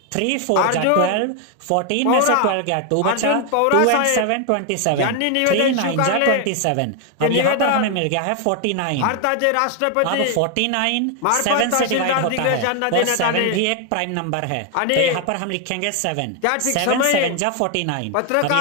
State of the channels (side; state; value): both; different; correlation 0.01